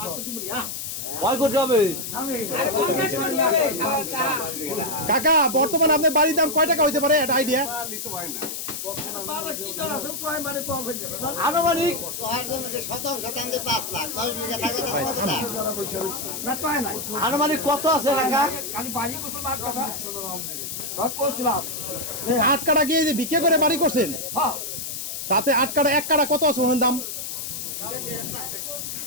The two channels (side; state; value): left; noise; hiss, 6 dB below the sound